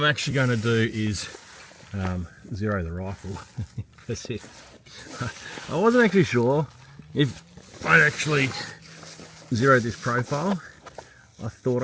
actually going to do is zero the rifle. That's it. I wasn't actually sure if I'd actually zeroed this profile. I thought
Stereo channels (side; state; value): both; identical; correlation 1.00